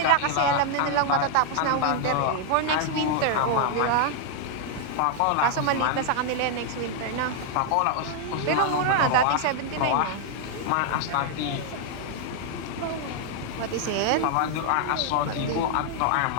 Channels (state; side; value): different; both; correlation 0.00